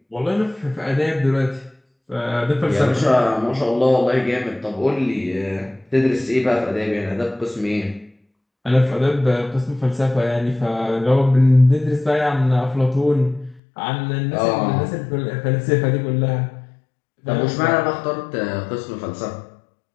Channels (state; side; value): drops out; right; at 13.6 s